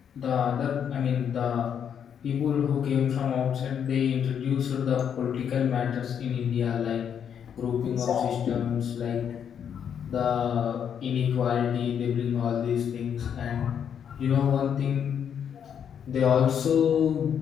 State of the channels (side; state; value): right; quieter; 8.2 dB